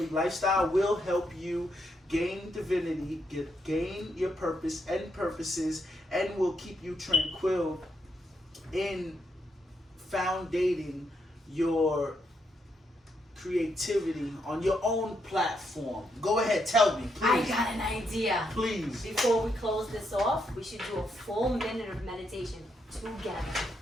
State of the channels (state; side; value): normal; both; correlation 0.79